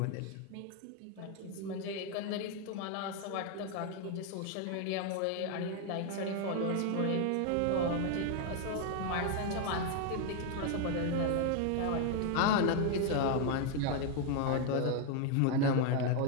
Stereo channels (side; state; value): both; different; correlation 0.00